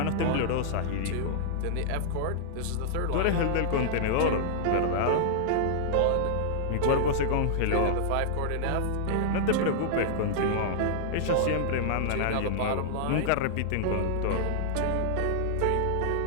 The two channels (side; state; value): both; different; correlation -0.01